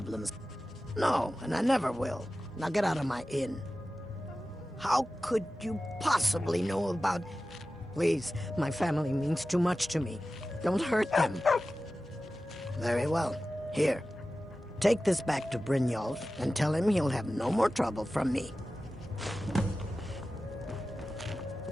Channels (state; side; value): normal; both; correlation 0.95